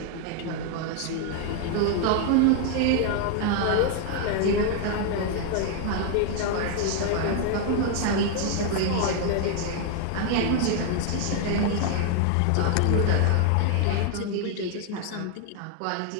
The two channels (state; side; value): different; both; correlation 0.00